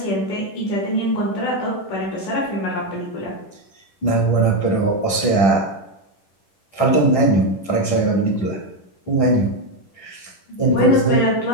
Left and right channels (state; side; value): late; right; 10 ms